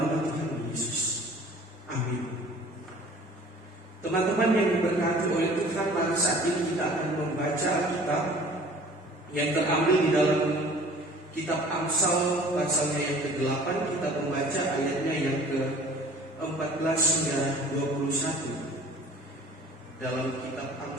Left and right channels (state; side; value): normal; both; correlation 0.48